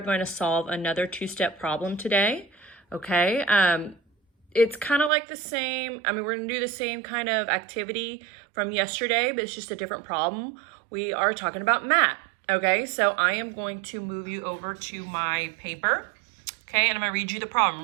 going to solve another two-step problem today, okay? It's kind of like the same, we're going to do the same kind of activity from yesterday, but it's just a different problem. We are talking about math, okay? So I am going to move you over to my paper, okay? And I'm going to read you the problem.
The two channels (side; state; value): left; drops out; at 5.1 s